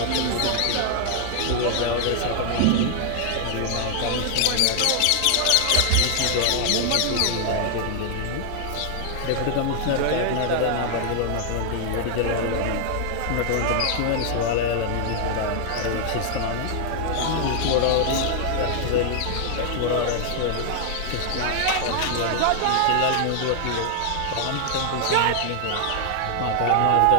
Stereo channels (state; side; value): different; both; correlation 0.00